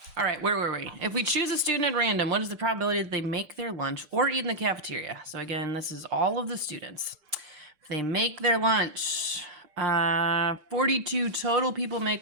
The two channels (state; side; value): late; left; 6.6 ms